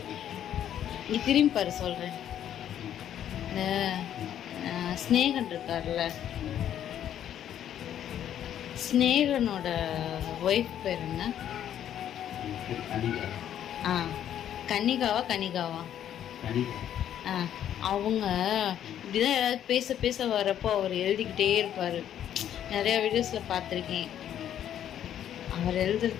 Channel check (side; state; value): right; quieter; 10.4 dB